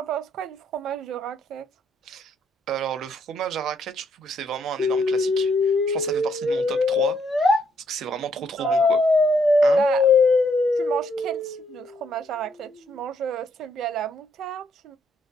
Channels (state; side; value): normal; both; correlation 0.73